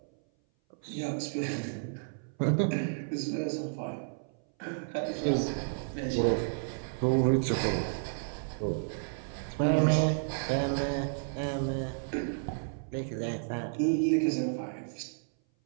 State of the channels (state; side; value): silent; left; 57 dB below the other